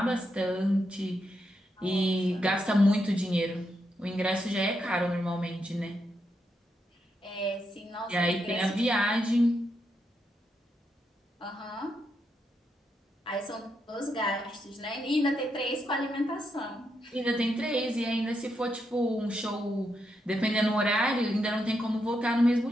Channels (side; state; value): both; normal; correlation 0.82